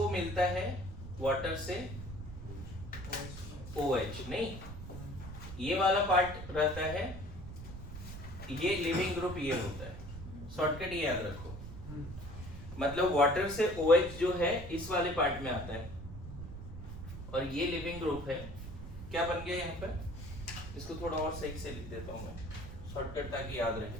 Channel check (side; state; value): right; noise; rumble, 10 dB below the sound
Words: मिलता है वाटर से OH, नहीं ये वाला पार्ट रहता है, ये लिविंग ग्रुप ये होता है, शॉर्टकट ये याद रखो। मतलब वाटर से OH जो है इस वाले पार्ट में आता है, और ये लिविंग ग्रुप है। क्या बन गया यहाँ पर, इसको थोड़ा और सही से लिख देता हूँ मैं, शॉर्टकट ताकि याद रहे,